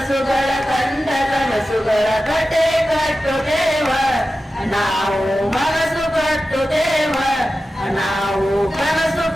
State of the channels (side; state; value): both; normal; correlation 0.93